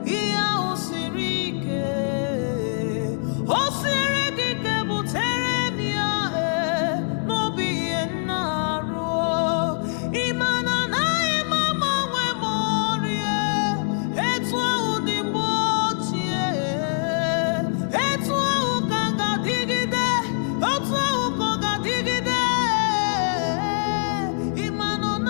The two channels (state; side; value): silent; right; digital silence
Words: ihe ahụ siri ike o siri gị ike butere m ya n'obi ihe nna arụ ịma na anaghị m agbanwe m ọrịa etu ahụ dị mgbe ochie etu ahụ ka ga-adịgide otu ahụ ka ọ ga-adịgide ịma na ọ